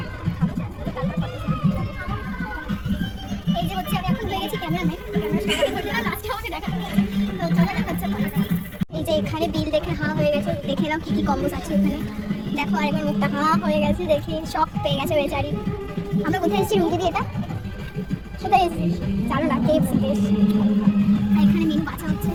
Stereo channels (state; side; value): identical; both; correlation 1.00